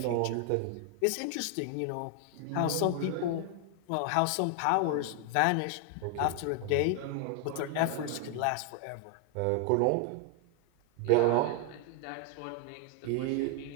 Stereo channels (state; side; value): different; both; correlation 0.00